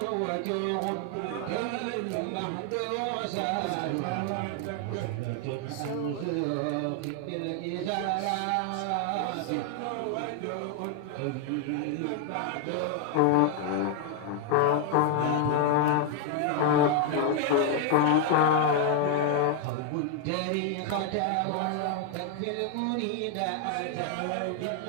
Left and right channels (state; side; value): different; both; correlation 0.00